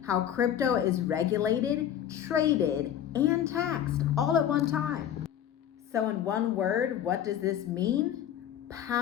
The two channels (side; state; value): right; quieter; 10.2 dB